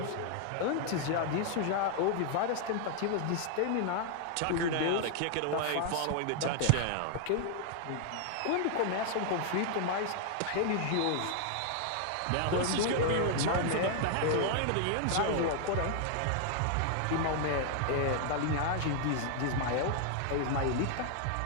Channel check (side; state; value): both; different; correlation 0.00